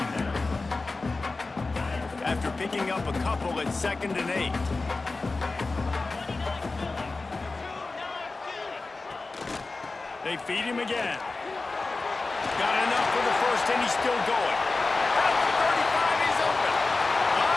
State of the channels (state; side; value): quieter; right; 3.6 dB